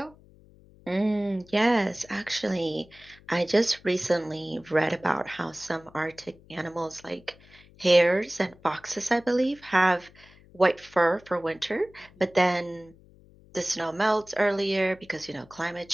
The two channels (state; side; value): noise; left; hum, 26 dB below the sound